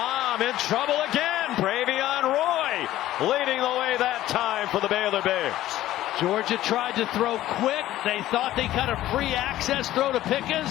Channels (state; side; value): quieter; right; 14.3 dB